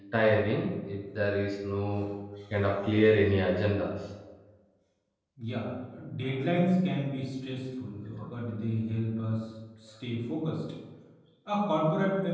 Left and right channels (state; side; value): identical; both; correlation 1.00